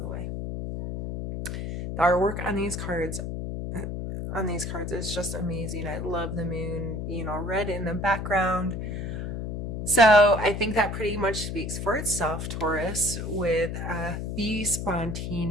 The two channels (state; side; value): noise; left; hum, 4 dB below the sound